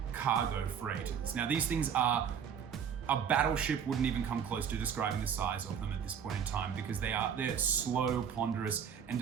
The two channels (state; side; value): quieter; left; 7.7 dB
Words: cargo freighters. Now these things are, a battleship wouldn't even come close to describing the size of them at this point in time, because they're slow, ponderous, and